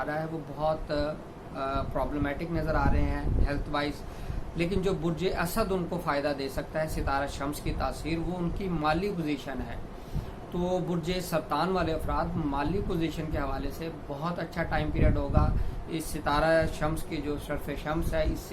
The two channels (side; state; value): both; identical; correlation 1.00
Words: رہا ہے وہ بہت پرابلمیٹک نظر آ رہے ہیں ہیلتھ وائز، لیکن جو برج اسد ان کو فائدہ دے سکتا ہے ستارہ شمس کی تاثیر، وہ ان کی مالی پوزیشن ہے. تو برج سرطان والے افراد مالی پوزیشن کے حوالے سے بہت اچھا ٹائم پیریڈ ہوگا. اس ستارہ شمس کی جو شرف شمس ہے اس